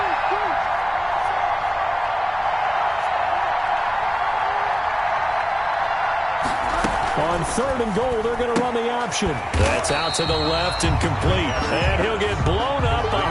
On 3rd and goal, they're going to run the option. That's out to the left and complete. And he'll get blown up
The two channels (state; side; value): identical; both; correlation 1.00